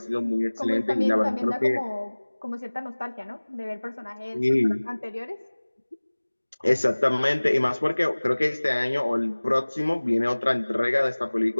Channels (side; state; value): both; inverted; correlation -1.00